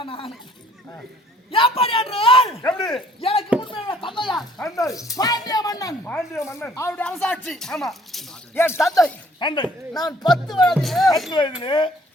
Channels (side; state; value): both; normal; correlation 0.59